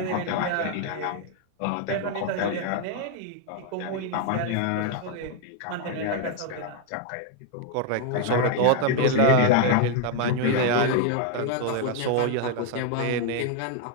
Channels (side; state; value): both; different; correlation 0.00